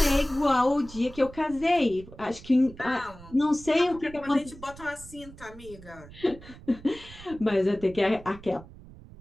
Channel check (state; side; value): noise; right; rumble, 18 dB below the sound